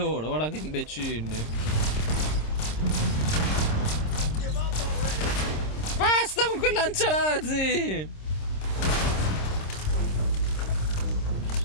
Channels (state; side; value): late; right; 26 ms